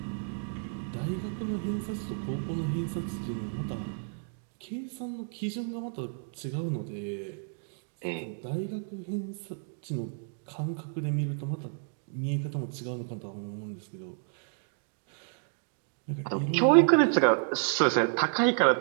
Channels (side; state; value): left; silent; digital silence